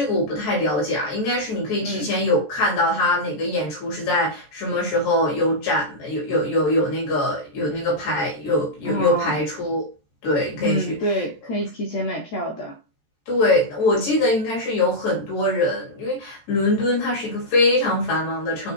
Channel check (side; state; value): right; late; 14 ms